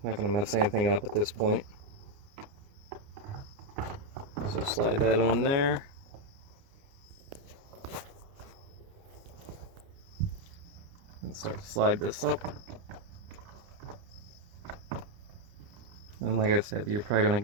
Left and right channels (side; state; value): left; late; 29 ms